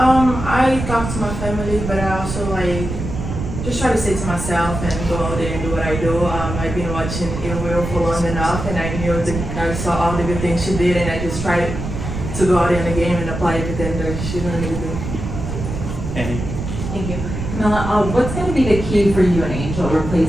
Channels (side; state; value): right; noise; rumble, 6 dB below the sound